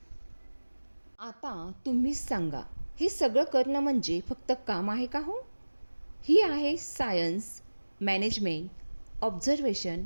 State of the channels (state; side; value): inverted; both; correlation -1.00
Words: आता तुम्हीच सांगा, हे सगळं करणं म्हणजे फक्त काम आहे का हो? ही आहे सायन्स, मॅनेजमेंट, ऑब्झर्वेशन,